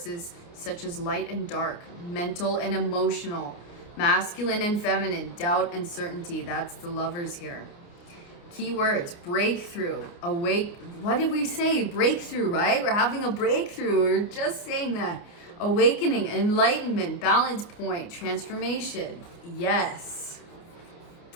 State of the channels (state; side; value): late; right; 29 ms